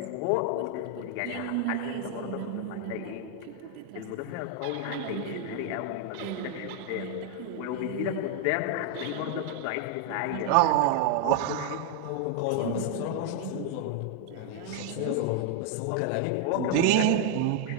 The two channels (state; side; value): different; both; correlation 0.00